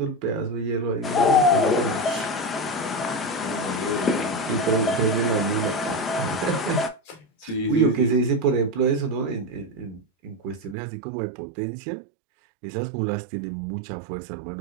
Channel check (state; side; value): drops out; left; at 10.8 s